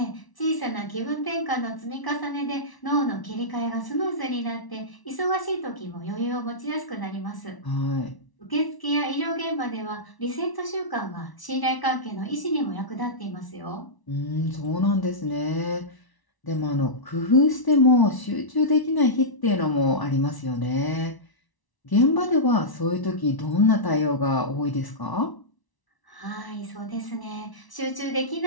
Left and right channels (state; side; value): late; right; 1.0 ms